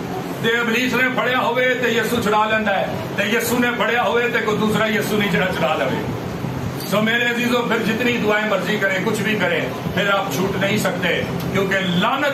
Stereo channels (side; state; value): both; identical; correlation 1.00